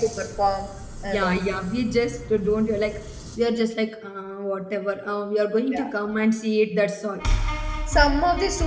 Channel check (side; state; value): both; identical; correlation 1.00